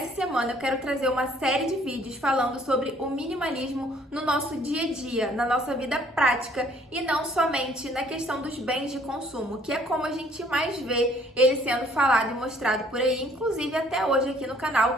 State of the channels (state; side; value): normal; both; correlation 0.60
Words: semana eu quero trazer uma série de vídeos falando sobre o minimalismo no nosso dia a dia, na nossa vida prática e não somente na questão dos bens de consumo, que é como a gente mais vê ele sendo falado e mostrado por aí, inclusive até hoje aqui no canal.